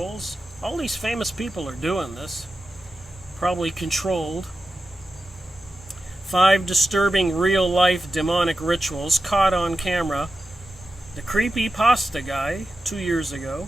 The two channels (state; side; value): normal; both; correlation 0.92